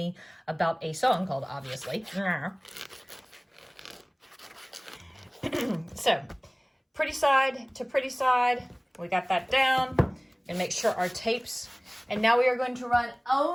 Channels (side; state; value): both; identical; correlation 1.00